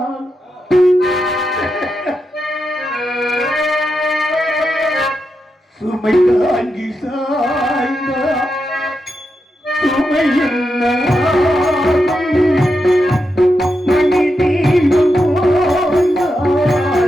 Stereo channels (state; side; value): normal; both; correlation 0.86